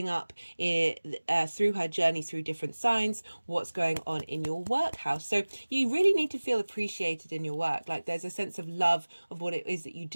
up through her journey through different signs, what's going on in your work house. So you really need to feel appreciated in your work. Like there's a sense of love of what it is that you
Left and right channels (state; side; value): inverted; both; correlation -1.00